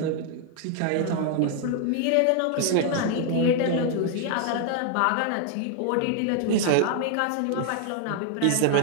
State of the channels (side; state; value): both; different; correlation 0.00